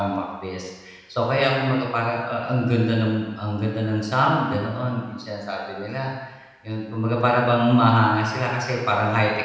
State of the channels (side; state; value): both; identical; correlation 1.00